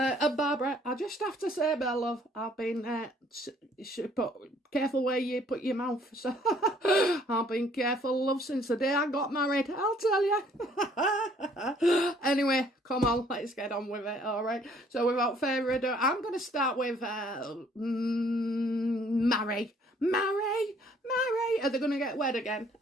Barbara, I just have to say, my love, I've been careful where you put your mouth. So I've been careful, love, since the day I got married. I'll tell you. Anyway, come on, let's get on with it. All right. So without further ado, I'm going to start with marry. Are they going to get wed again?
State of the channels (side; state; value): both; normal; correlation 0.61